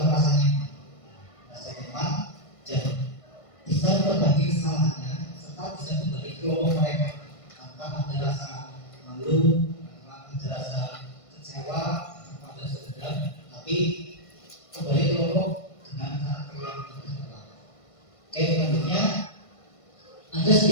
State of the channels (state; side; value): late; right; 1.5 ms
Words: merasa nyaman, dan bisa berbagi kesalahannya serta bisa kembali ke kelompok mereka tanpa ada rasa malu, tanpa ada rasa kecewa, tanpa ada dendam, tapi kembali ke kelompok dengan karakter yang berbeda. Oke, selanjutnya ada